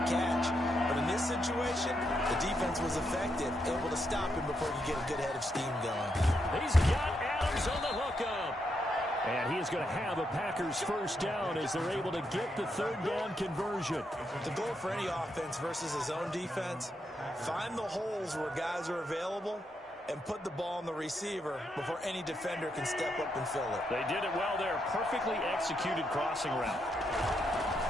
catch. But in this situation, the defense was effective, able to stop him before you get a good head of steam going. He's got Adams on the hookup. And he is going to have a Packers first down as they're able to get the 3rd down conversion. The goal for any offense versus his own defense, find the holes where guys are available and put the ball on the receiver before any defender can step up and fill it. They did it well there. Perfectly executed crossing route.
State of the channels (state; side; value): normal; both; correlation 0.81